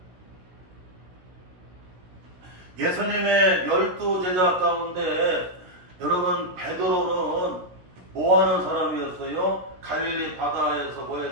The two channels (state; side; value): late; left; 16 ms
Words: 예수님의 12제자 가운데 여러분 베드로는 뭐하는 사람이었어요? 갈릴리 바다에서